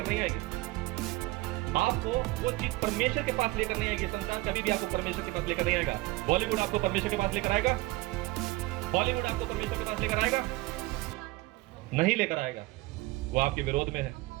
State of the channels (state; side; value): quieter; left; 20.7 dB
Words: नहीं आएगी। आपको वो चीज परमेश्वर के पास लेकर नहीं आएगी। संसार कभी भी आपको परमेश्वर के पास लेकर नहीं आएगा। बॉलीवुड आपको परमेश्वर के पास लेकर आएगा? बॉलीवुड आपको परमेश्वर के पास लेकर आएगा? नहीं लेकर आएगा। वो आपके विरोध में है।